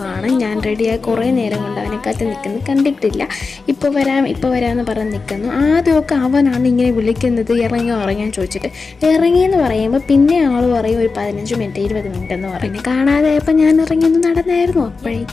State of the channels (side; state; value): right; quieter; 4.4 dB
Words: ഞാൻ റെഡിയായി കുറേ നേരം കൊണ്ട് അവനെ കാത്ത് നിൽക്കുന്നു, കണ്ടിട്ടില്ല. ഇപ്പോൾ വരാമെന്ന് പറഞ്ഞ് നിൽക്കുന്നു. ആദ്യമൊക്കെ അവനാണ് ഇങ്ങനെ വിളിക്കുന്നത്, ഇറങ്ങാൻ ചോദിച്ചിട്ട്. ഇറങ്ങിയെന്ന് പറയുമ്പോൾ പിന്നെ ആൾ പറയും ഒരു 15 മിനിറ്റ് 20 മിനിറ്റ് എന്ന് പറയും. പിന്നെ കാണാതായപ്പോൾ ഞാൻ ഇറങ്ങിയൊന്ന് നടന്നായിരുന്നു.